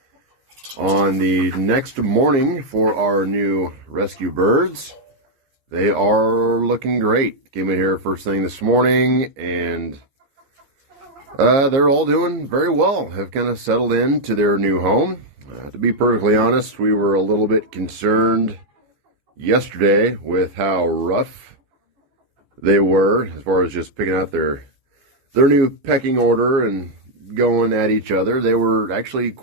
on the next morning for our new rescue birds. They are looking great. Came in here first thing this morning, and they're all doing very well. Have kind of settled into their new home. To be perfectly honest, we were a little bit concerned yesterday with how rough they were as far as just picking out their new pecking order and going at each other. They were actually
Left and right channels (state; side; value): late; left; 15 ms